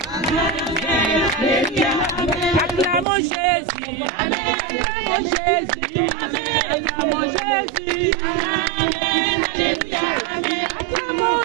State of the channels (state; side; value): drops out; left; at 3.1 s